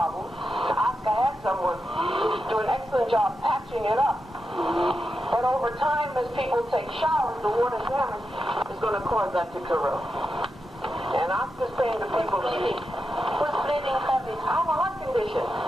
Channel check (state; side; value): normal; both; correlation 0.88